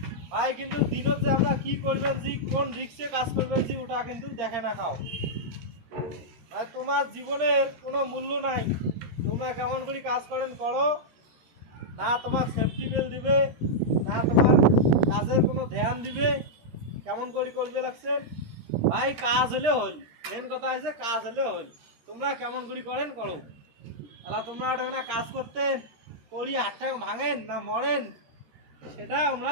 ভাই। কিন্তু দিনত যে আমরা কি করবেন জি, কোন রিক্সে কাজ করবেন জি, ওটা কিন্তু দেখে না খাও। তোমার জীবনের কোনো মূল্য নাই, তোমরা কেমন করে কাজ করেন করো না, তোমার সেফটি বেল্ট দিবে না, তোমার কাজের কোনো ধ্যান দিবে, কেমন করে করবে লাগছেন ভাই। কাজ হলে হল, মেন কথা হচ্ছে কাজ হলে হল। তোমরা কেমন করে করেন করো, তাহলে তোমরা ওটা না কাজ করতেন করি হাতটা ভাঙেন না মরেন, সেটা আমরা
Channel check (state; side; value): late; left; 13 ms